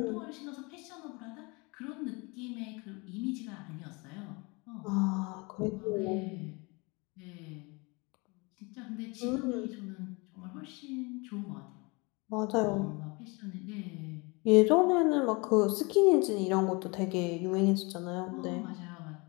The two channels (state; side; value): quieter; right; 27.9 dB